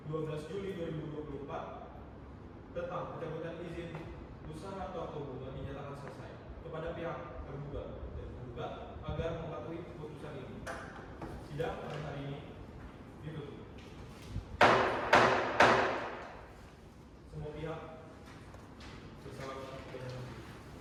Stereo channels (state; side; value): identical; both; correlation 1.00